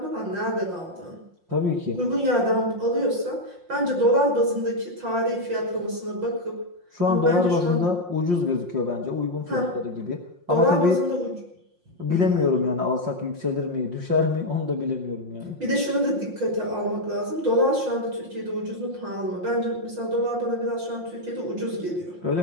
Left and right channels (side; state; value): left; late; 5.6 ms